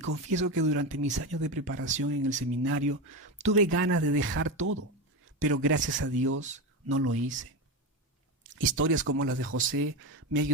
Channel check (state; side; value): normal; both; correlation 0.17